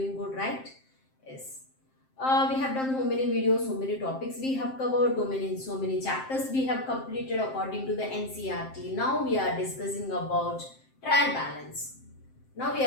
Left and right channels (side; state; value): right; late; 7.6 ms